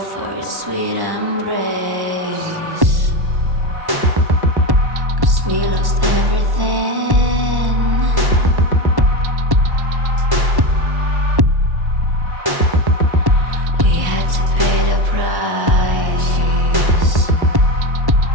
for your sweet embrace. 'Cause we lost everything. We had to pay the price.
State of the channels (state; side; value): late; left; 1.1 ms